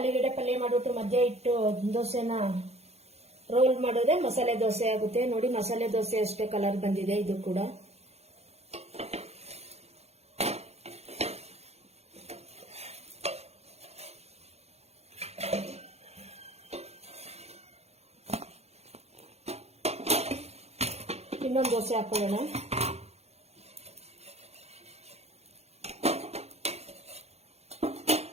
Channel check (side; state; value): left; late; 0.31 ms